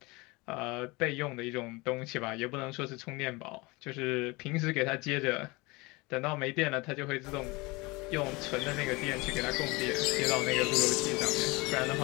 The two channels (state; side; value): quieter; right; 24.4 dB